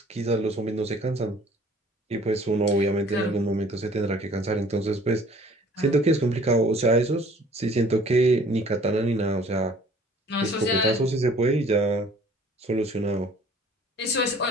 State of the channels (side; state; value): both; normal; correlation 0.53